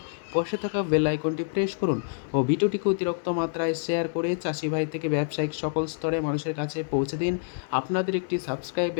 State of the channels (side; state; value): right; silent; digital silence